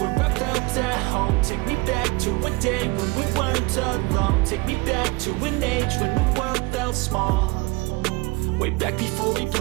I felt at home. Take me back to a day when we weren't alone. Take me back to an age when the world felt small. Way back before we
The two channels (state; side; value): quieter; left; 24.7 dB